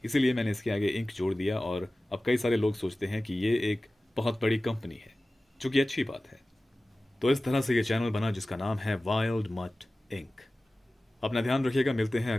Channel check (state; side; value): normal; both; correlation 0.97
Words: इसीलिए मैंने इसके आगे इंक जोड़ दिया और अब कई सारे लोग सोचते हैं कि ये एक बहुत बड़ी कंपनी है, जो कि अच्छी बात है। तो इस तरह से ये चैनल बना जिसका नाम है वाइल्ड मट इंक। अपना ध्यान रखिएगा, मिलते हैं